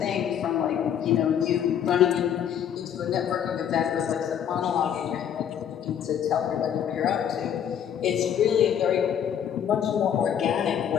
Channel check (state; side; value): quieter; right; 9.1 dB